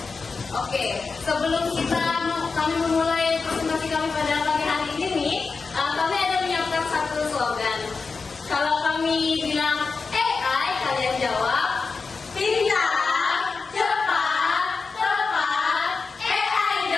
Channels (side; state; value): right; quieter; 4.6 dB